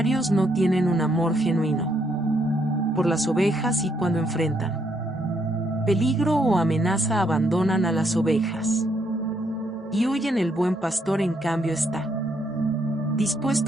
no tienen un amor genuino por las ovejas y cuando enfrentan peligro o amenaza abandonan a las ovejas y huyen. El buen pastor, en cambio, está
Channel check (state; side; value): normal; both; correlation 0.74